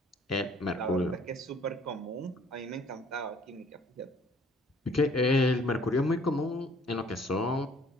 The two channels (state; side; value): normal; both; correlation 0.58